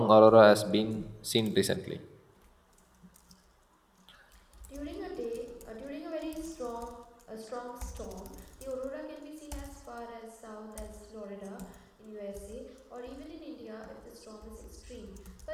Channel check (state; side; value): identical; both; correlation 1.00